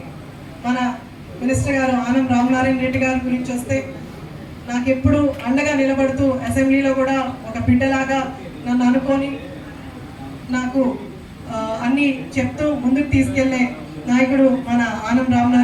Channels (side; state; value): both; identical; correlation 1.00